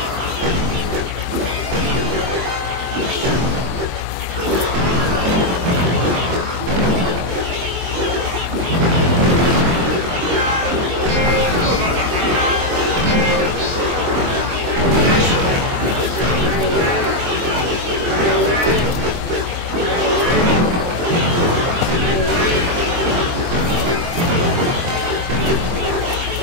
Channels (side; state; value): left; late; 23 ms